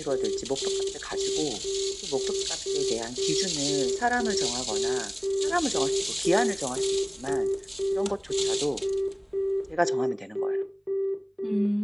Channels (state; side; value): identical; both; correlation 1.00